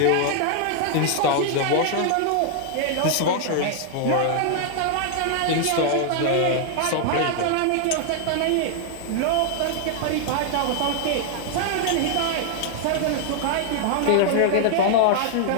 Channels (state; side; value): different; both; correlation 0.00